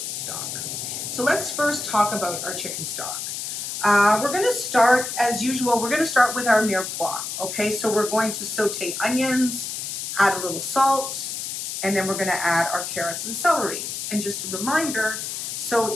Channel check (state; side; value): noise; left; hiss, 5 dB below the sound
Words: stock. So let's first talk about our chicken stock. We're going to start, as usual, we're going to start with our mirepoix. Okay, so we're going to saute onions, add a little salt, and then we're going to add our carrots and celery. And just a reminder, so